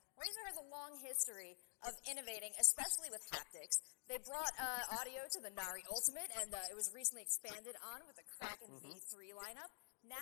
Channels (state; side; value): silent; right; digital silence